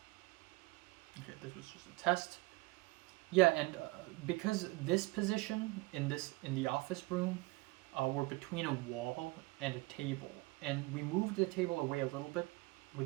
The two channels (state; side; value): quieter; left; 23.2 dB